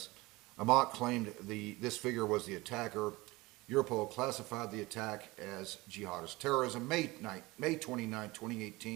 Amat claimed this figure was the attacker. Europol classified the attack as jihadist terrorism. May 29,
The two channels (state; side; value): quieter; left; 21.7 dB